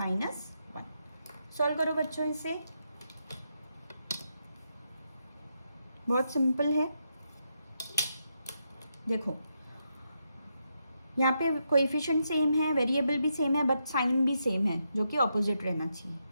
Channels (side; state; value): both; inverted; correlation -0.82